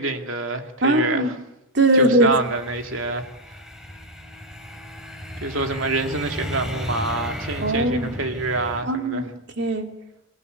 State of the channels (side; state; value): both; normal; correlation 0.02